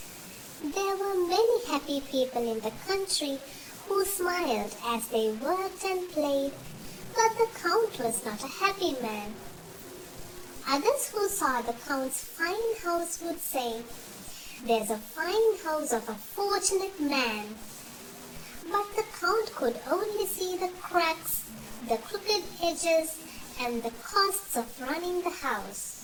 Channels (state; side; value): identical; both; correlation 1.00